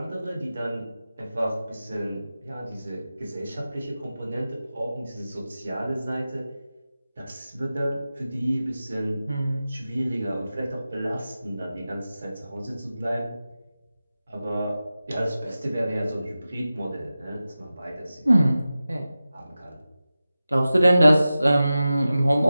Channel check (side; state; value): both; inverted; correlation -0.94